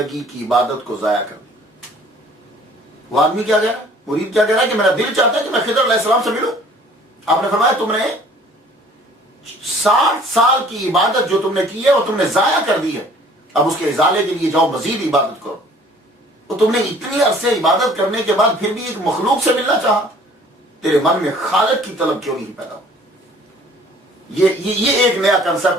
کی عبادت کو ضائع کر دی. وہ آدمی کیا کہہ رہا ہے؟ مرید کیا کہہ رہا ہے کہ میرا دل چاہتا ہے کہ میں خضر علیہ السلام سے ملوں. آپ نے فرمایا تم نے 60 سال کی عبادت جو تم نے کی ہے وہ تم نے ضائع کر دی ہے. اب اس کے ازالے کے لیے جاؤ، مزید عبادت کرو. تو تم نے اتنی عرصے عبادت کرنے کے بعد پھر بھی ایک مخلوق سے ملنا چاہا. تیرے من میں خالق کی طلب کیوں نہیں پیدا ہو؟ یہ ایک نیا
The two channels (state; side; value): normal; both; correlation 0.53